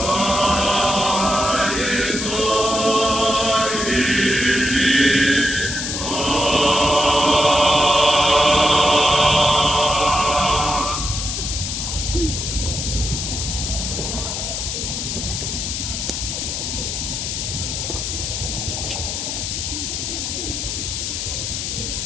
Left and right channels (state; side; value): noise; left; hiss, 3 dB below the sound